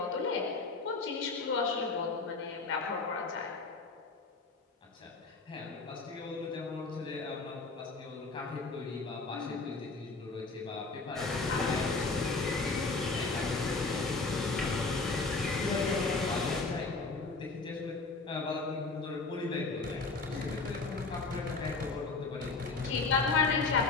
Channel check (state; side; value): quieter; right; 3.9 dB